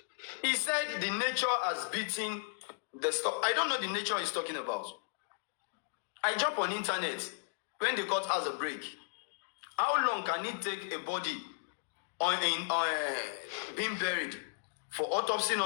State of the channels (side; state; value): right; silent; digital silence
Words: He said the nature has beaten the stuff. I don't know the nature he's talking about. I jump on internet when the court has a break. How long can it take a body being buried for autopsy